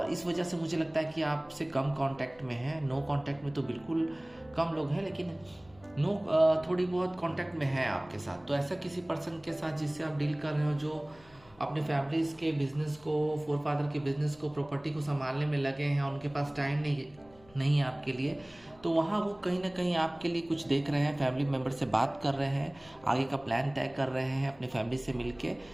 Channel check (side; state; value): left; noise; hum, 27 dB below the sound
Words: इस वजह से मुझे लगता है कि आपसे कम कांटेक्ट में है। नो कांटेक्ट में तो बिल्कुल कम लोग हैं, लेकिन थोड़ी बहुत कांटेक्ट में है आपके साथ। तो ऐसा किसी पर्सन के साथ जिससे आप डील कर रहे हो, जो अपने फैमिलीज के बिजनेस को, फोर फादर के बिजनेस को, प्रॉपर्टी को संभालने में लगे हैं और उनके पास टाइम नहीं है आपके लिए, तो वहाँ वो कहीं ना कहीं आपके लिए कुछ देख रहे हैं, फैमिली मेम्बर से बात कर रहे हैं, आगे का प्लान तय कर रहे हैं अपनी फैमिली से मिलके।